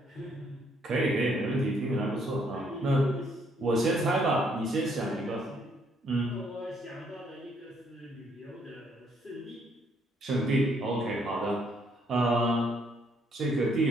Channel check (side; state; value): both; normal; correlation 0.69